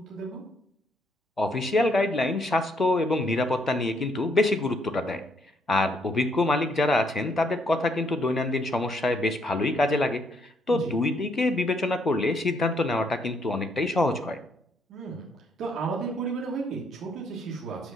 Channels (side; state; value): both; normal; correlation 0.71